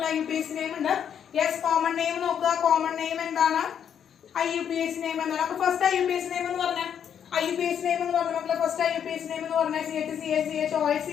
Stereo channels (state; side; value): quieter; right; 8.5 dB